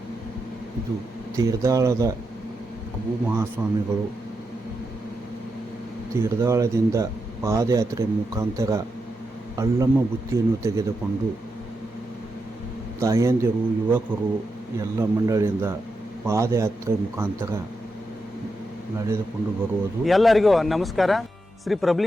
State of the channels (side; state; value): both; normal; correlation 0.86